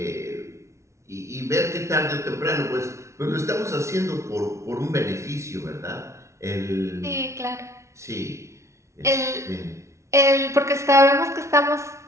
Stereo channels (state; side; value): late; left; 0.14 ms